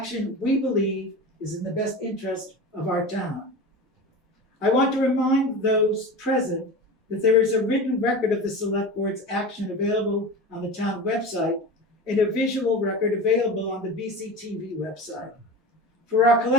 we believe is in the best interest of our town. I want to remind those present that there is a written record of the Select Board's action available on the town website and a visual record available on the BCTV website. For our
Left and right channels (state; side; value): normal; both; correlation 0.30